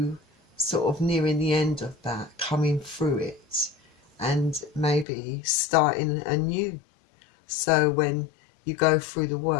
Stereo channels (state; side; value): drops out; right; at 5.1 s